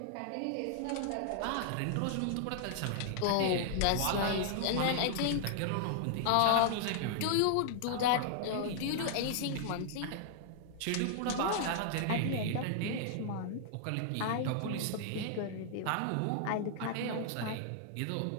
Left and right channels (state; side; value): different; both; correlation -0.01